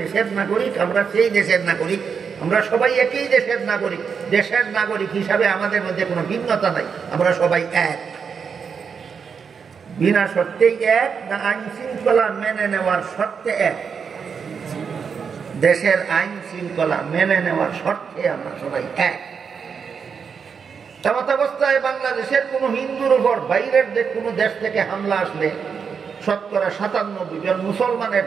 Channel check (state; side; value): quieter; left; 6.3 dB